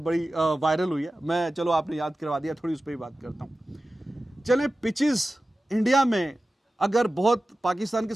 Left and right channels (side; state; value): both; normal; correlation 0.95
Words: वायरल हुई है, मैं, चलो आपने याद करवा दिया, थोड़ी उस पर ही बात करता हूँ। चले, पिचेस इंडिया में अगर बहुत, पाकिस्तान के